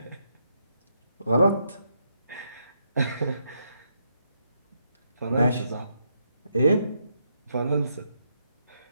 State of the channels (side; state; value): both; inverted; correlation -0.78